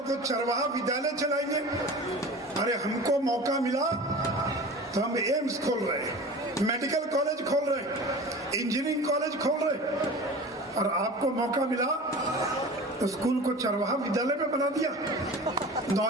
तो चरवाहा विद्यालय चलाएंगे। अरे हमको मौका मिला तो हम एम्स खोल रहे हैं, मेडिकल कॉलेज खोल रहे हैं, इंजीनियरिंग कॉलेज खोल रहे हैं, और आपको मौका मिला तो स्कूल को चरवाहा विद्यालय में बना दिया।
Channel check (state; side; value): normal; both; correlation 0.37